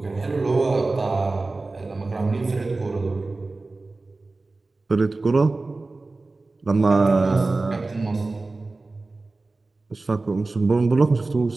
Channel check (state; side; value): quieter; left; 3.4 dB